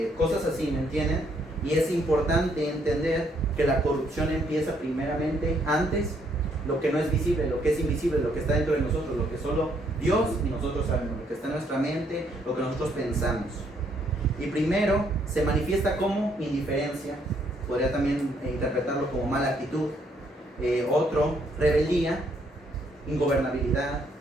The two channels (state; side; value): normal; both; correlation 0.70